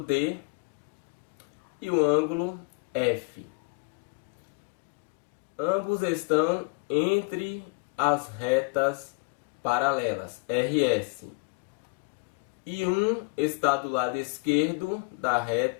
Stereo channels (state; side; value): quieter; right; 33.9 dB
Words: D e o ângulo F. Ambos estão entre as retas paralelas, RS. E um está do lado esquerdo da